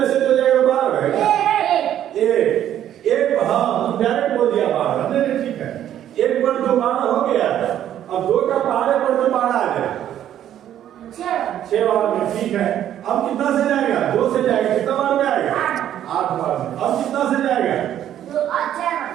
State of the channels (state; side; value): quieter; left; 11.1 dB